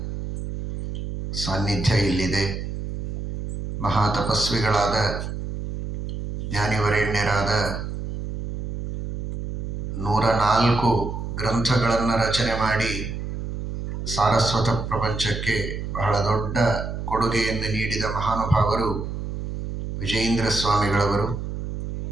ಸಾನ್ನಿಧ್ಯ ಇಲ್ಲಿದೆ. ಮಹಾತಪಸ್ವಿಗಳಾದ ಜ್ಞಾನಿವರೇಣ್ಯರಾದ 104 ಗ್ರಂಥಗಳನ್ನು ರಚನೆ ಮಾಡಿ ಸಾರಸ್ವತ ಪ್ರಪಂಚಕ್ಕೆ ಬಹಳ ದೊಡ್ಡ ಕೊಡುಗೆಯನ್ನು ನೀಡಿದ ಮಹಾನುಭಾವರು ವಿಜಯೇಂದ್ರ ಸ್ವಾಮಿಗಳವರು.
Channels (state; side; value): noise; right; hum, 5 dB below the sound